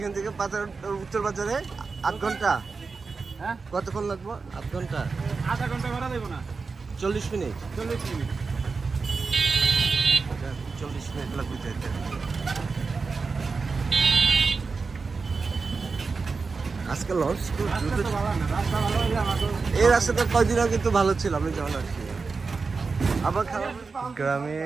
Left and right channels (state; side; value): quieter; left; 4.5 dB